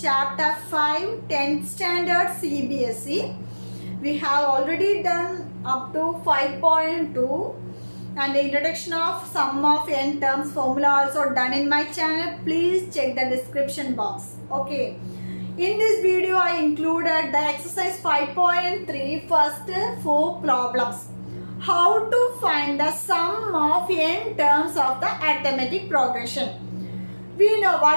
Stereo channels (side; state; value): both; inverted; correlation -1.00